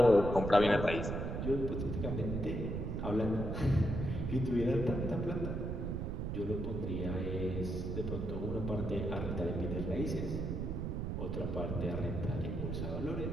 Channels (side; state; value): right; noise; rumble, 2 dB below the sound